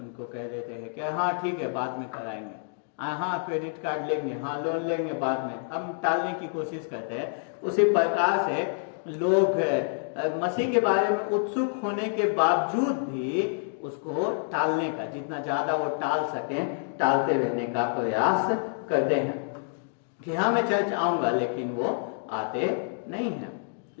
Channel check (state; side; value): silent; right; digital silence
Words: कह देते हैं कि हाँ ठीक है बाद में कराएंगे, हाँ क्रेडिट कार्ड लेंगे, हाँ लोन लेंगे बाद में, हम टालने की कोशिश करते हैं। उसी प्रकार से लोग मसीह के बारे में उत्सुक होने के बावजूद भी उसको टालने का, जितना ज्यादा वो टाल सके, टालते रहने का प्रयास करते हैं कि हाँ मैं चर्च आऊंगा, लेकिन वो आते नहीं है।